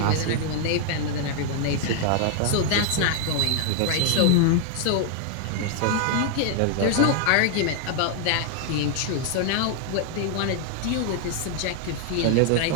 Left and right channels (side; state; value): both; different; correlation 0.00